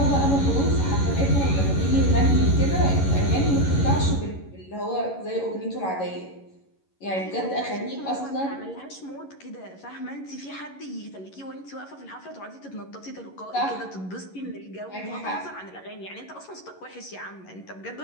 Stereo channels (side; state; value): right; late; 11 ms